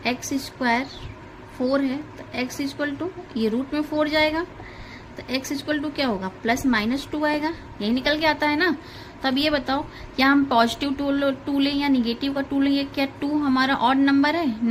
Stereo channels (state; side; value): identical; both; correlation 1.00